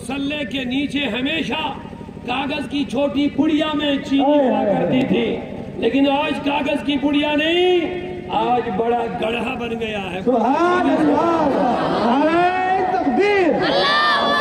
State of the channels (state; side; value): identical; both; correlation 1.00